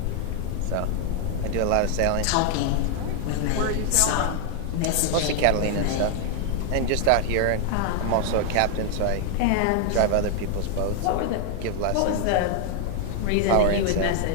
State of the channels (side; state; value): both; different; correlation 0.00